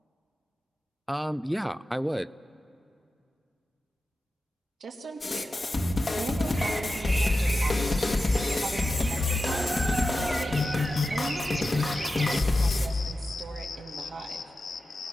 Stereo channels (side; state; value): both; normal; correlation 0.92